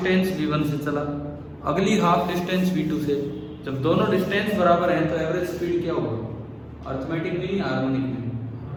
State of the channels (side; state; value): both; identical; correlation 1.00